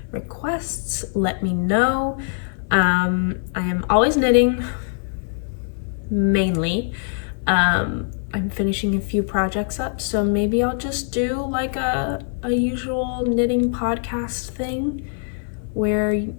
requests, let me know. I am always knitting, mainly. I'm finishing a few projects up, so maybe I'll just do like a usual knitting podcast thing where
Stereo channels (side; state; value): right; silent; 55 dB below the other